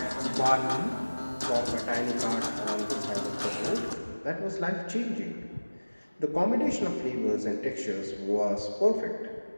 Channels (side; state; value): both; inverted; correlation -1.00